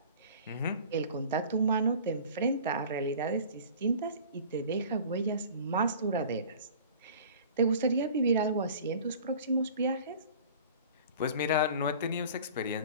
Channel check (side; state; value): both; inverted; correlation -0.43